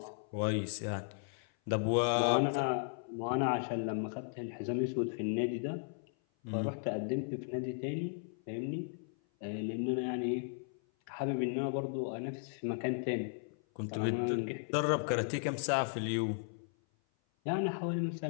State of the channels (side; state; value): right; silent; 54 dB below the other